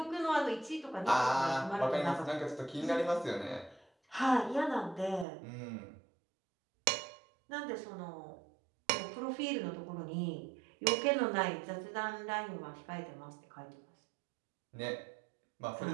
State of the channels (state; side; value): drops out; left; at 5.2 s